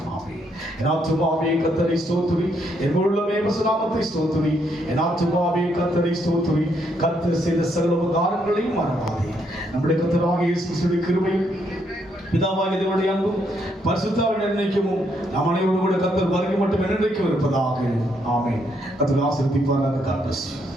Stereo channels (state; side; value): normal; both; correlation 0.74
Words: ஆமென். என் ஆத்துமாவே கர்த்தரை ஸ்தோத்திரி, என் உள்ளமே இயேசு நாமத்தை ஸ்தோத்திரி. என் ஆத்துமாவே கர்த்தரை ஸ்தோத்திரி. கர்த்தர் செய்த சகல உபகாரங்களையும் மறவாதே. நம்முடைய கர்த்தராகிய இயேசு கிறிஸ்துவின் கிருபையும் பிதாவாகிய தேவனுடைய அன்பும் பரிசுத்தாவின் நிர்ணயிக்கமும் நம் அனைவரோடு கூட கர்த்தர் வருகை மட்டும் என்றைக்கும் இருப்பதாக. ஆமென். கர்த்தர் ஆசீர்வதிப்பாராக. God bless you.